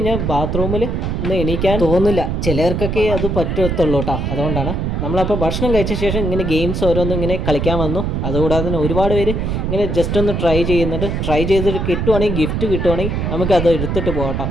ബാത്റൂമിൽ ഒന്ന് എണീക്കാൻ തോന്നില്ല, ചിലർക്കൊക്കെ അത് പറ്റത്തുള്ളൂ കേട്ടോ. അതുകൊണ്ടാണ് നമ്മളപ്പോൾ ഭക്ഷണം കഴിച്ച ശേഷം ഇങ്ങനെ ഗെയിംസ് ഓരോന്നും ഇങ്ങനെ കളിക്കാൻ വന്നു. അതുകൂടാതെ തന്നെ ഒരുപാട് പേര് ഇങ്ങനെ ജസ്റ്റ് ഒന്ന് ട്രൈ ചെയ്യുന്നുണ്ട്. ട്രൈ ചെയ്തിട്ട് കിട്ടുവാണെങ്കിൽ, ഗിഫ്റ്റ് കിട്ടുവാണെങ്കിൽ നമുക്കത് എടുത്തിട്ട് പോകട്ടോ.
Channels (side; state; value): right; noise; rumble, 1 dB below the sound